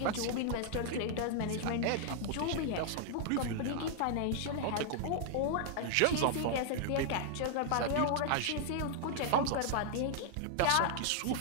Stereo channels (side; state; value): both; different; correlation -0.01